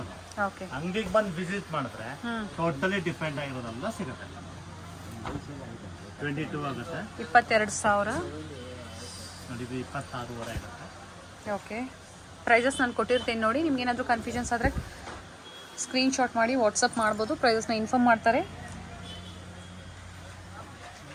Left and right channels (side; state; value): both; identical; correlation 1.00